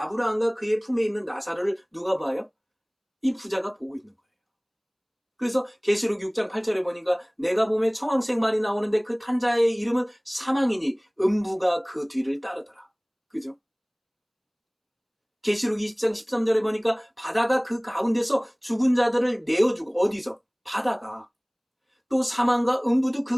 그의 품에 있는 나사로를 누가 봐요? 이 부자가 보고 있는 거예요. 그래서 계시록 6장 8절에 보니까 내가 보매 청황색 말이 나오는데 그 탄 자의 이름은 사망이니 음부가 그 뒤를 따르더라. 그죠? 계시록 20장 13절에 보니까 바다가 그 가운데서 죽은 자들을 내어주고, 어디서? 바다가. 또 사망과 음부도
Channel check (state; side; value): identical; both; correlation 1.00